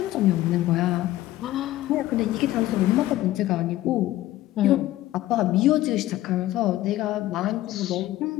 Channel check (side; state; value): right; quieter; 15.2 dB